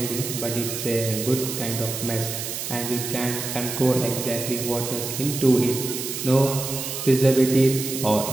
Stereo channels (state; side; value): noise; right; hiss, 5 dB below the sound